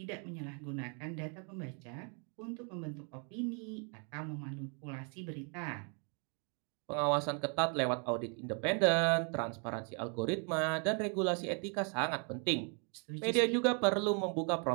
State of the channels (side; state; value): left; quieter; 39.3 dB